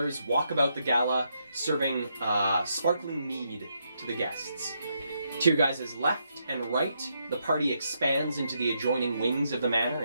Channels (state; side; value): inverted; both; correlation -0.79